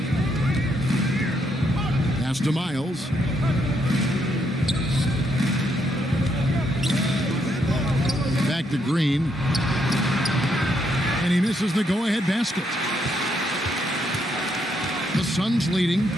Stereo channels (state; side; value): normal; both; correlation 0.76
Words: Pass to Miles. Back to Green. And he misses the go-ahead basket. The Suns leading